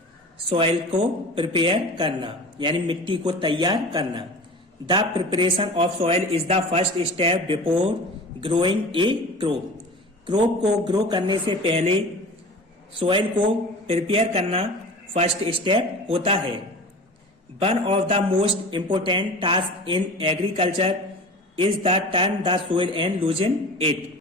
सॉइल को प्रिपेयर करना यानी मिट्टी को तैयार करना। The preparation of soil is the first step before growing A crop. Crop को ग्रो करने से पहले सॉइल को प्रिपेयर करना फर्स्ट स्टेप होता है। One of the most important task in agriculture is the turn the soil and loosen it.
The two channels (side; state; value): both; normal; correlation 0.36